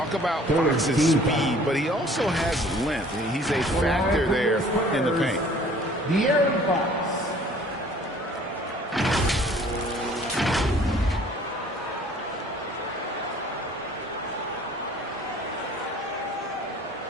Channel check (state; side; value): normal; both; correlation 0.53